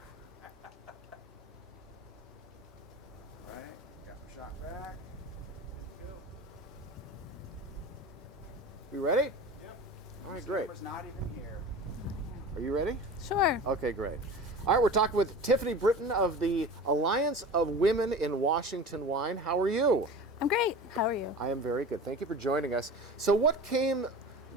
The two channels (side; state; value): both; normal; correlation 0.35